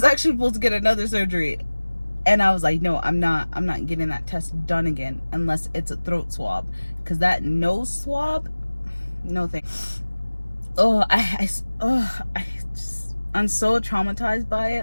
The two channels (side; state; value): both; inverted; correlation -1.00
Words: actually supposed to get another surgery, and I was like, no, I'm not getting that test done again unless it's a throat swab, because that nose swab, no thanks. Oh, I'm so traumatized by